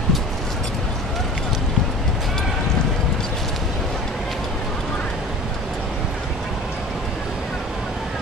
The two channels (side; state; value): both; normal; correlation 0.40